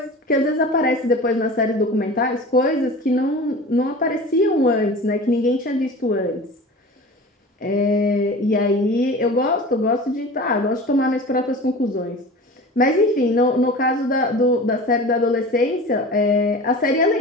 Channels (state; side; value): normal; both; correlation 0.36